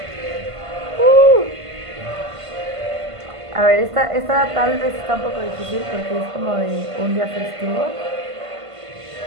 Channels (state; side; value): late; left; 1.5 ms